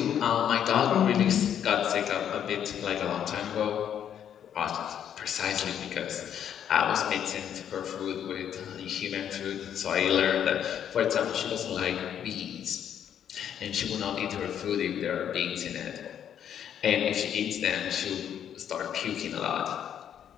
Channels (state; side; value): quieter; right; 9.3 dB